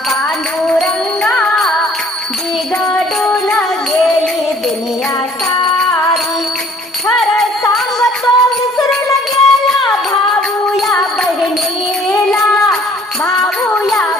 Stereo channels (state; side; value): normal; both; correlation 0.56